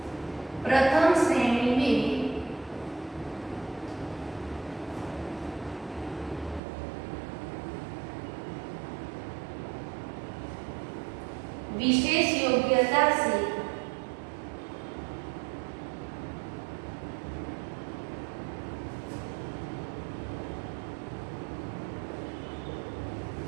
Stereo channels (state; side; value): drops out; left; at 6.6 s